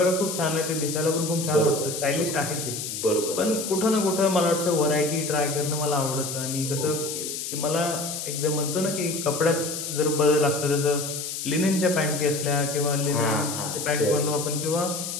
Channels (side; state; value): left; noise; hiss, 5 dB below the sound